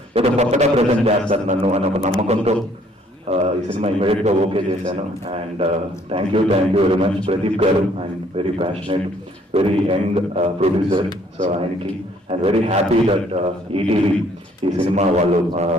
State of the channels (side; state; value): both; normal; correlation 0.63